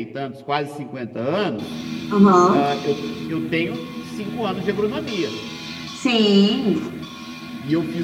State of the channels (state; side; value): identical; both; correlation 1.00